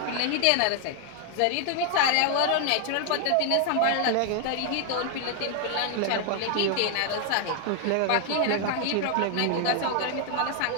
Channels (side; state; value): both; different; correlation 0.00